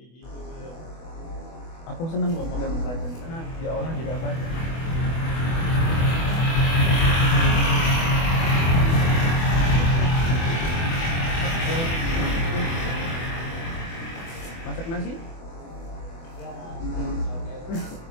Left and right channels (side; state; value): right; late; 24 ms